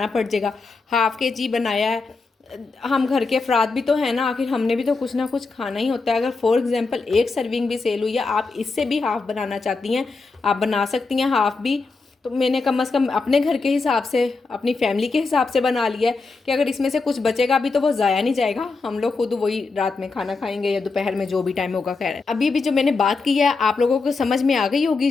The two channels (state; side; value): quieter; right; 4.1 dB